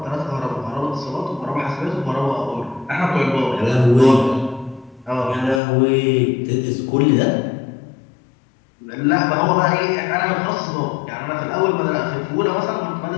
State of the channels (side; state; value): right; drops out; at 5.6 s